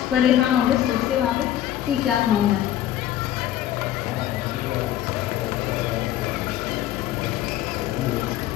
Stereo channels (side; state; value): right; quieter; 12.2 dB